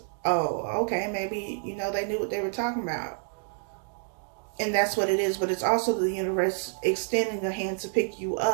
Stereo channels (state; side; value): silent; left; digital silence